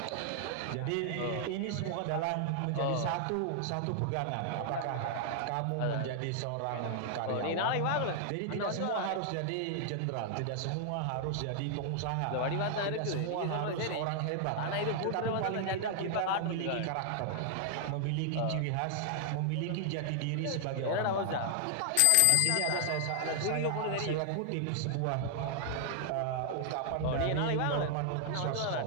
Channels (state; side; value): different; both; correlation 0.00